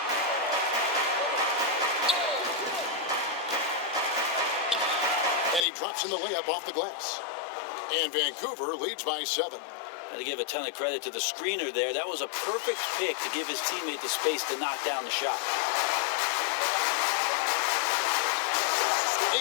And he drops in the layup off the glass. And Vancouver leads by 7. Got to give a ton of credit to the screener there. That was a perfect pick to give his teammate the space to knock down the shot.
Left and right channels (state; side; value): drops out; right; at 5.7 s